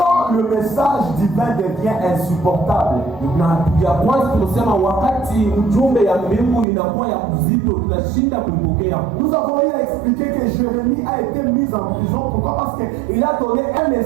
le message divin devient insupportable, na ya kwanza tunasema wakati ujumbe ya mbingu inakuwa ya mzito tunashinda kuipokea. Nous avons eu à expliquer que Jérémie a été mis en prison. Pourquoi? Parce qu'il a donné un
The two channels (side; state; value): left; drops out; at 6.7 s